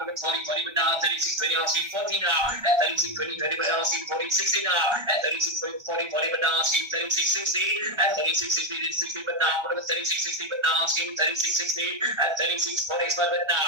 40, but now 36, 20, asking 40 now. At 36, 20, 20, but now asking 40, 60 now. At 36, 40, 40, but now asking 36, 60. At 36, 60, 60, but now 36, 60, but now asking 36, 60. At 36, 40, but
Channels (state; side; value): late; left; 1.3 ms